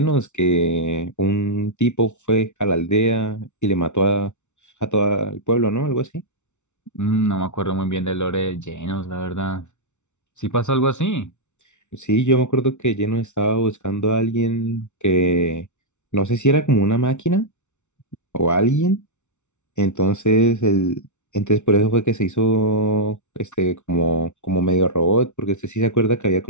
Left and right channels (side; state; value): right; late; 0.83 ms